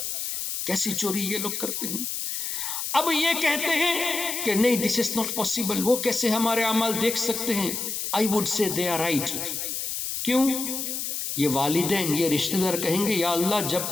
کیسی چوری یہ لوگ کرتے ہیں۔ اب یہ کہتے ہیں کہ نہیں دس از ناٹ پاسبل، وہ کیسے ہمارے اعمال دیکھ سکتے ہیں؟ I would say they are right. کیوں؟ یہ والدین، یہ رشتہ دار کہیں گے یا اللہ جب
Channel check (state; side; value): noise; left; hiss, 3 dB below the sound